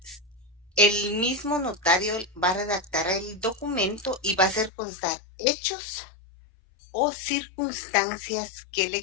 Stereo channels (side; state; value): right; drops out; at 4.7 s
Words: el mismo notario va a redactar el documento y va a hacer constar hechos o circunstancias que